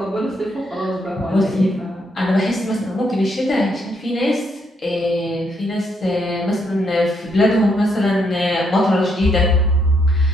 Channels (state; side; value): normal; both; correlation 0.75